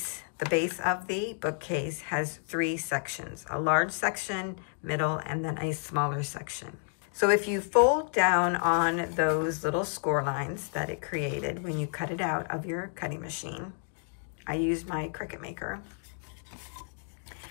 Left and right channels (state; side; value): silent; right; 57 dB below the other